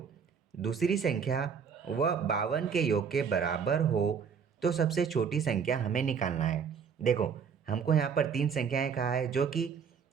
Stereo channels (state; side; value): quieter; left; 6.6 dB